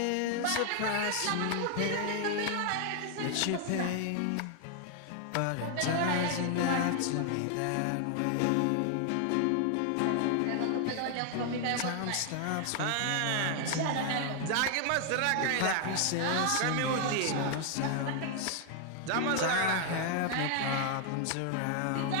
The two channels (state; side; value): different; both; correlation 0.00